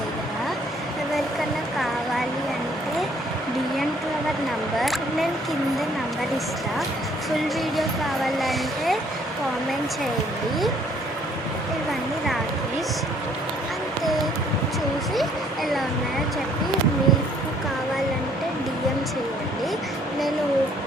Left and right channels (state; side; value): normal; both; correlation 0.62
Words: ఎవరికన్నా కావాలి అంటే డిఎం టు అవర్ నంబర్, నేను కింద నంబర్ ఇస్తా. ఫుల్ వీడియో కావాలంటే కామెంట్ చేయండి. ఇవన్నీ రాఖీస్ అంతే, చూసి ఎలా ఉన్నాయో చెప్పి మీకు కావాలంటే డిఎం చేయండి. నేను